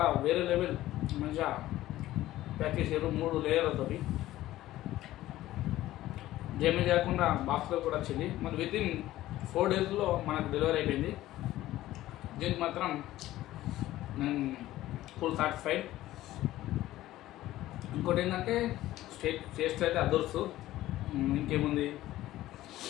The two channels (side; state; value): right; quieter; 15.2 dB